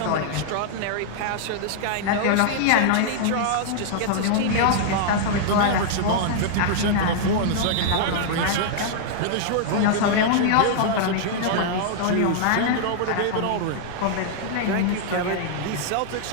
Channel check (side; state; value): both; different; correlation -0.01